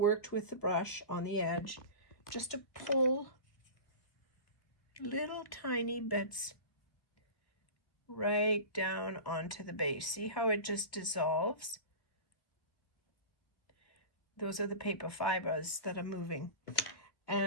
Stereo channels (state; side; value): late; right; 1.6 ms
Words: with the brush on the edge just to pull little tiny bits right down onto the base. See how it just dissolves? Those are the paper fibers that are moving.